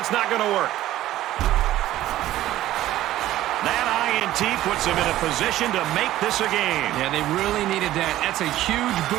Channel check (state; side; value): quieter; left; 14.4 dB